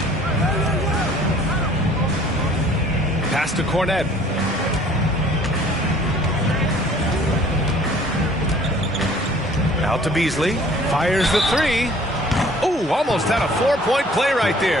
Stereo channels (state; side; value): normal; both; correlation 0.54